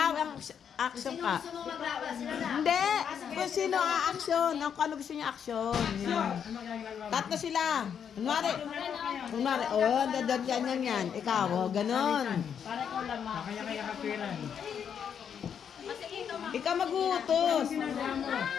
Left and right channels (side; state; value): right; quieter; 7.8 dB